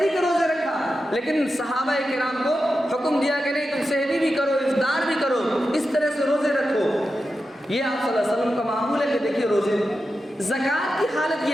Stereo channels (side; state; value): both; normal; correlation 0.90